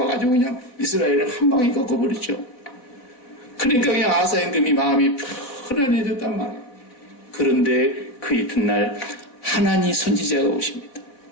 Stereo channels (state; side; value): late; right; 4.0 ms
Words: 와가지고 그냥 이스라엘을 한 방에 꺾어버렸죠. 그러니까 그냥 아사 임금이 마음이 편안해졌단 말이에요. 그런데 그 이튿날 하나니 선지자가 오십니다.